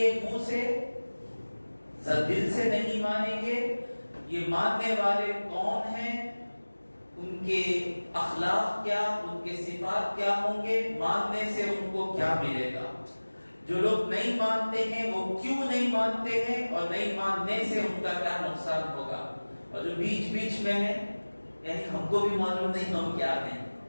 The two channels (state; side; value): inverted; both; correlation -1.00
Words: منہ سے، دل سے نہیں مانیں گے۔ یہ ماننے والے کون ہیں، ان کے اخلاق کیا، ان کے صفات کیا ہوں گے، ماننے سے ان کو کیا ملے گا۔ جو لوگ نہیں مانتے ہیں وہ کیوں نہیں مانتے ہیں، اور نہیں ماننے سے ان کا کیا نقصان ہوگا۔ اور جو بیچ بیچ میں ہیں، یعنی ہم کو بھی معلوم نہیں ہم کیا ہیں،